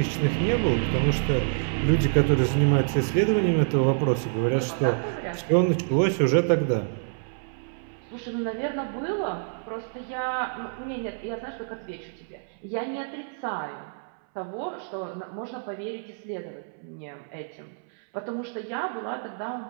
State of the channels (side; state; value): left; silent; 60 dB below the other